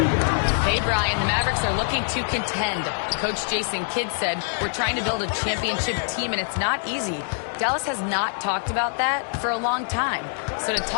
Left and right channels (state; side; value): silent; right; 62 dB below the other